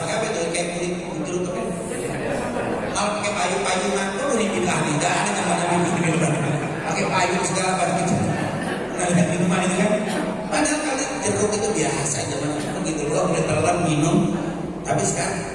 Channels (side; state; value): both; identical; correlation 1.00